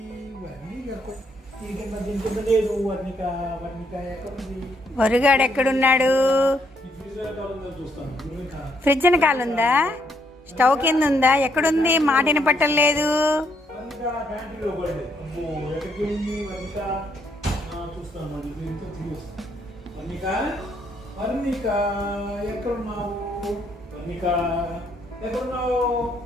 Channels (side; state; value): both; normal; correlation 0.72